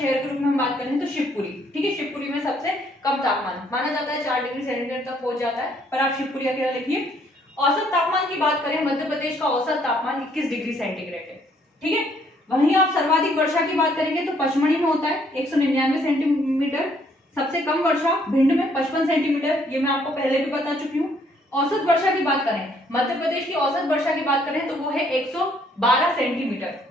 के रूप में हम बात करें तो शिवपुरी, ठीक है। शिवपुरी में सबसे कम तापमान माना जाता है, 4 डिग्री सेंटीग्रेड तक पहुंच जाता है, पर आप शिवपुरी अकेला लिखिए। औसत तापमान की बात करें, मध्य प्रदेश का औसत तापमान 21 डिग्री सेंटीग्रेड है, ठीक है। वहीं आप सर्वाधिक वर्षा की बात करेंगे तो पचमढ़ी में होता है 199 सेंटीमीटर, सबसे कम वर्षा भिंड में 55 सेंटीमीटर, ये मैं आपको पहले भी बता चुकी हूँ। औसत वर्षा की बात करें, मध्य प्रदेश की औसत वर्षा की बात करें तो वो है 112 सेंटीमीटर,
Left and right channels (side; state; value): both; normal; correlation 0.66